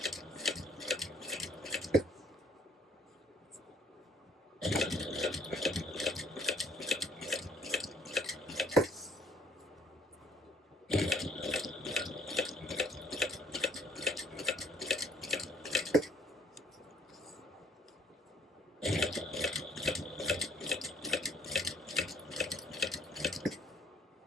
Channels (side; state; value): both; normal; correlation 0.61